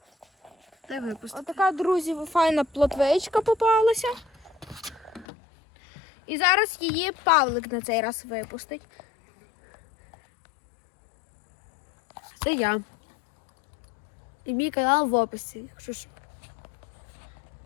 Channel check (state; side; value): drops out; right; at 5.2 s